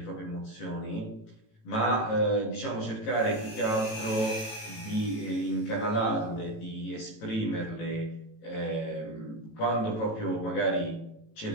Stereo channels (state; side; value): late; right; 18 ms